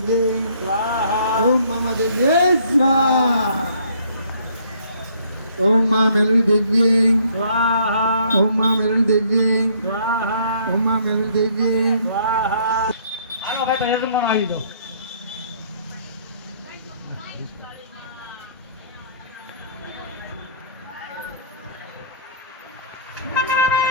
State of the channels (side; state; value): both; inverted; correlation -0.62